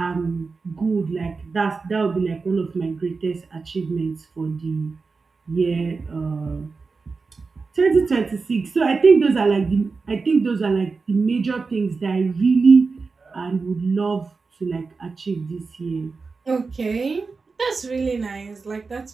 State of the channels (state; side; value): quieter; left; 4.4 dB